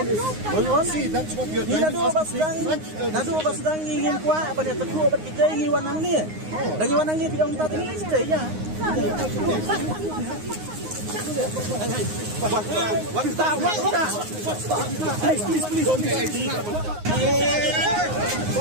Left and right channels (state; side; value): late; left; 9.6 ms